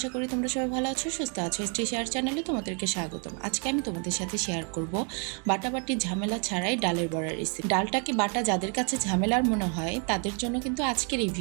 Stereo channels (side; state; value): left; quieter; 38.2 dB